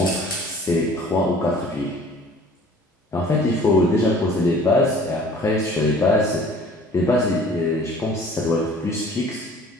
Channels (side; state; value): both; normal; correlation 0.49